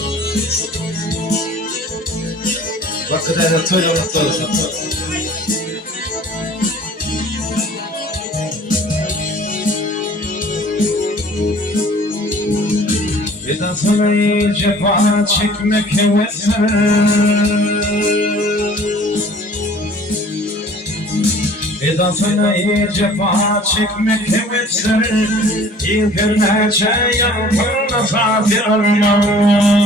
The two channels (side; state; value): both; normal; correlation 0.50